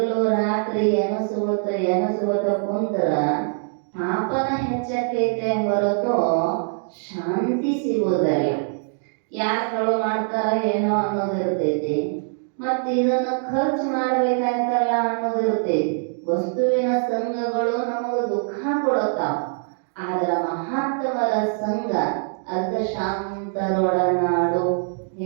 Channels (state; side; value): silent; left; digital silence